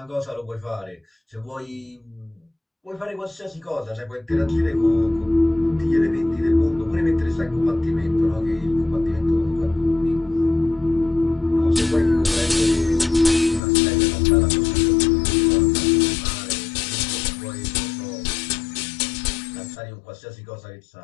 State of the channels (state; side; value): drops out; right; at 13.6 s